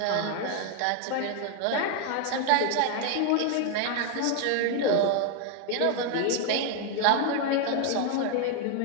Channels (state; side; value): different; both; correlation 0.00